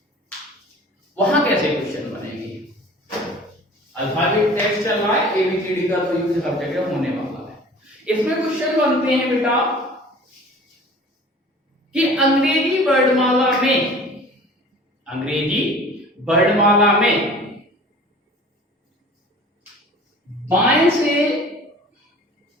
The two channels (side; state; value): both; normal; correlation 0.45